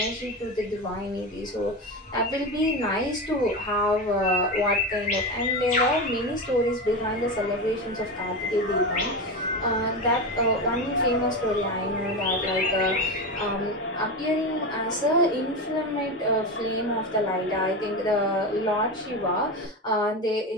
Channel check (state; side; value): normal; both; correlation 0.19